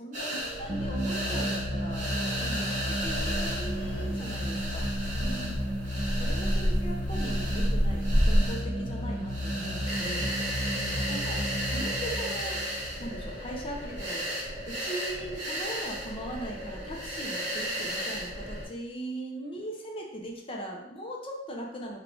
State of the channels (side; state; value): both; normal; correlation 0.69